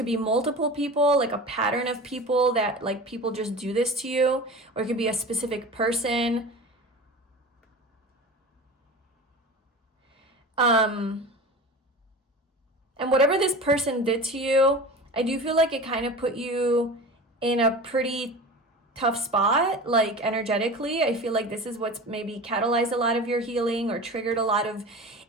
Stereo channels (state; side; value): normal; both; correlation 0.33